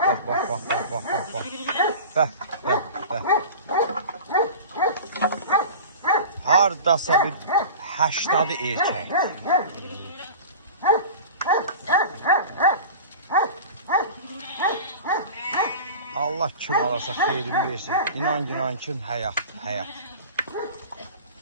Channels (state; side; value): inverted; both; correlation -0.35